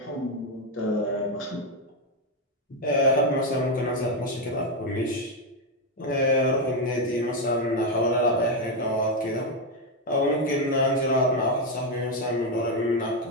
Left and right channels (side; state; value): both; normal; correlation 0.05